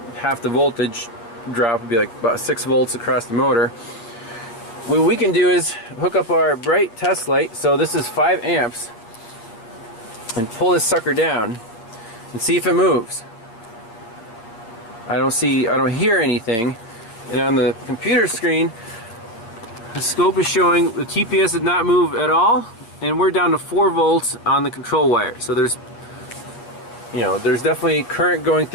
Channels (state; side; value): late; right; 8.8 ms